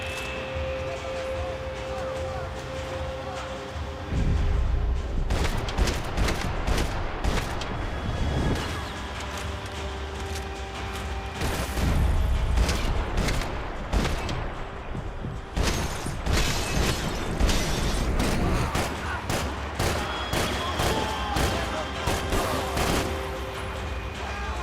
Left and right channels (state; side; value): identical; both; correlation 1.00